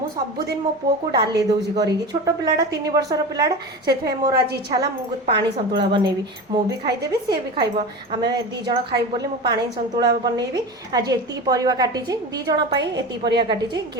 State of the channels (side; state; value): both; normal; correlation 0.28